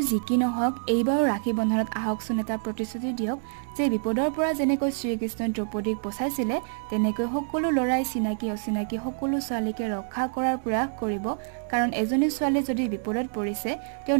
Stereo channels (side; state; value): left; silent; digital silence